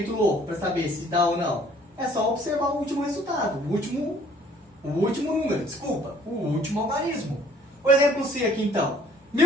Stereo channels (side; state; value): both; normal; correlation 0.58